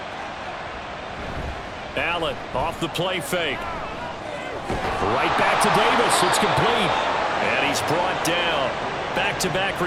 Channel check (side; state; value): both; identical; correlation 1.00